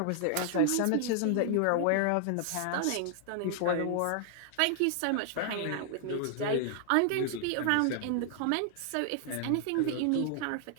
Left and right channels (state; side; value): different; both; correlation 0.00